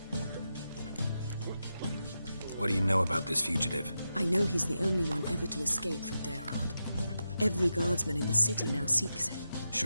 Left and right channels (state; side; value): inverted; both; correlation -0.89